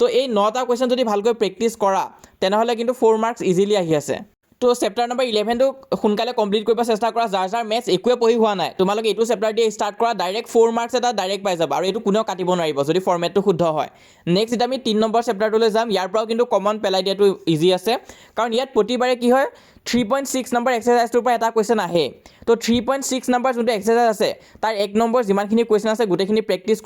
এই 9টা কুৱেশ্যন যদি ভালকৈ প্ৰেক্টিছ কৰা তেনেহ'লে কিন্তু 4 মাৰ্কছ ইজিলি আহি আছে তো চেপ্টাৰ নম্বৰ 11টো সোনকালে কমপ্লিট কৰিব চেষ্টা কৰা যাৰ মেথছ একোৱে পঢ়ি হোৱা নাই তোমালোকে এইটো চেপ্টাৰ দিয়ে ষ্টাৰ্ট কৰা ডাইৰেক্ট 4 মাৰ্কছ এটা ডাইৰেক্ট পাই যাবা আৰু এইটো কোনেও কাটিব নোৱাৰিব যদি ফৰ্মেটটো শুদ্ধ হয় নেক্সট এতিয়া আমি 3 নম্বৰ চেপ্টাৰটোলৈ যাম ইয়াৰ পৰাও কিন্তু কমন পেলাই দিয়াটো ইজি আছে কাৰণ ইয়াত প্ৰতিবাৰে কি হয় 3.6 নম্বৰ এক্সাৰচাইজটোৰ পৰা এটা কুৱেশ্যন আহে তো 3.6 নম্বৰ যোনটো এক্সাৰচাইজ আছে তাৰ 1 নম্বৰ যিমানখিনি কুৱেশ্যন আছে গোটেইখিনি প্ৰেক্টিছ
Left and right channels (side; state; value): both; identical; correlation 1.00